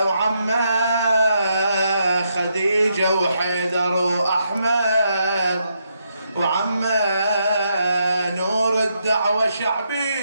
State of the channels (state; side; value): inverted; both; correlation -0.79